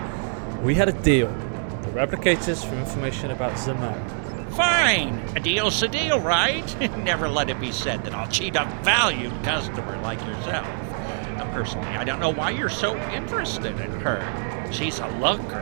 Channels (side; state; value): left; silent; 58 dB below the other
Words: We had a deal. The replicators for information about Zaman. Fine. A deal's a deal, right? Never let it be said that I'll cheat a valued customer like yourself. Personally, I don't know why you're so interested in her. She's a